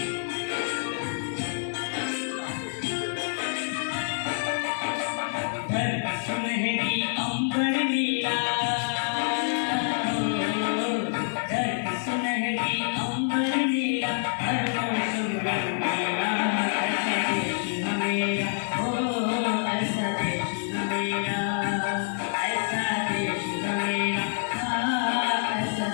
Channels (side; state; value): right; silent; digital silence